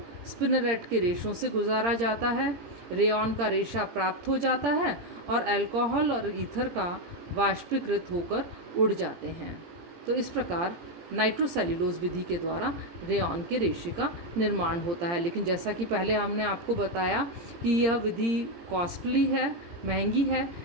स्पिनरेट के रेशों से गुजारा जाता है, रेयॉन का रेशा प्राप्त हो जाता है और अल्कोहल और ईथर का वाष्पीकृत होकर उड़ जाते हैं। तो इस प्रकार नाइट्रोसेल्यूलोज विधि के द्वारा रेयॉन के रेशे का निर्माण होता है। लेकिन जैसा कि पहले हमने आपको बताया कि यह विधि कॉस्टली है, महंगी है,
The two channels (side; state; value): left; late; 17 ms